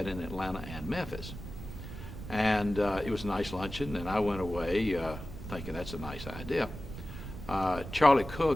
in Atlanta and Memphis. And it was a nice luncheon, and I went away thinking that's a nice idea. Charlie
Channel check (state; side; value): noise; right; rumble, 10 dB below the sound